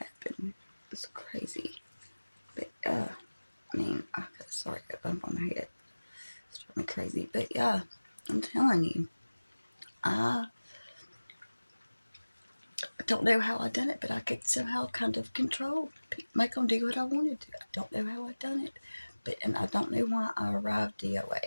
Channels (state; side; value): inverted; both; correlation -1.00